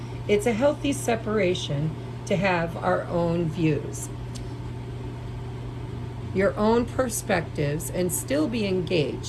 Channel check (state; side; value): identical; both; correlation 1.00